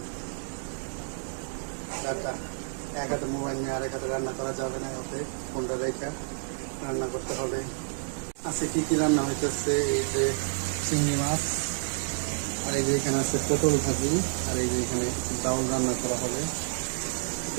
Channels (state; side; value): silent; left; digital silence